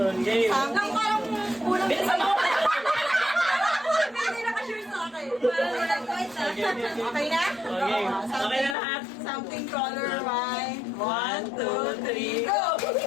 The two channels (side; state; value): right; drops out; at 8.8 s